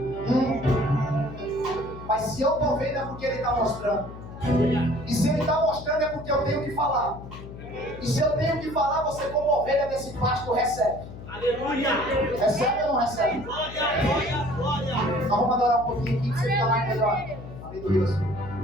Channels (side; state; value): left; noise; hum, 13 dB below the sound